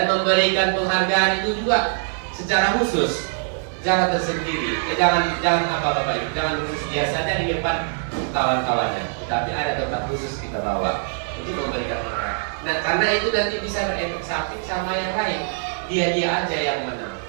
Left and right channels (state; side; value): silent; left; 64 dB below the other